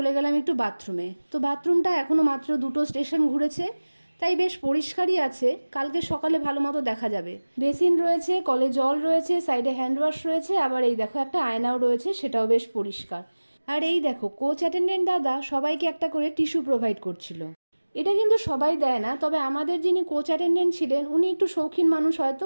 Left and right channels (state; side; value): inverted; both; correlation -1.00